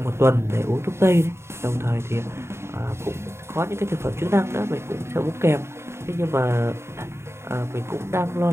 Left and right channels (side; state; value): left; late; 0.13 ms